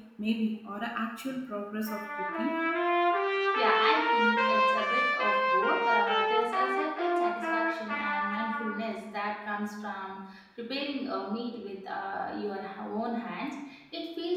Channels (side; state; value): both; identical; correlation 1.00